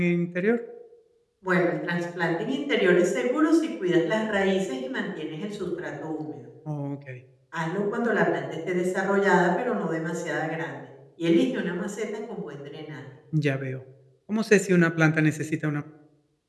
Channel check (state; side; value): identical; both; correlation 1.00